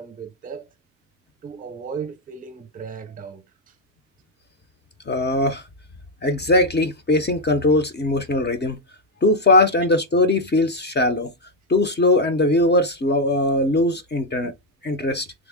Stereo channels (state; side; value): normal; both; correlation 0.01